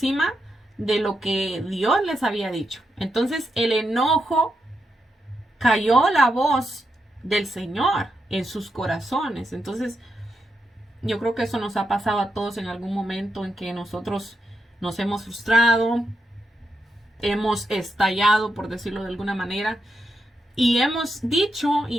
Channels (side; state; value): both; normal; correlation 0.84